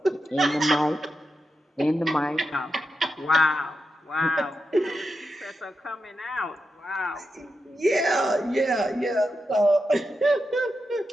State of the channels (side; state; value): both; normal; correlation 0.88